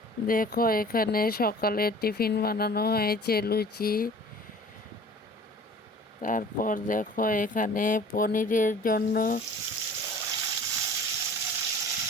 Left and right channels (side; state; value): both; normal; correlation 0.46